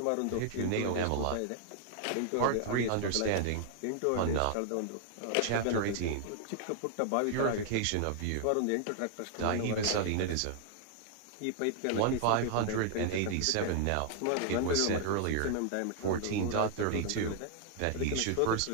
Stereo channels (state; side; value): different; both; correlation -0.01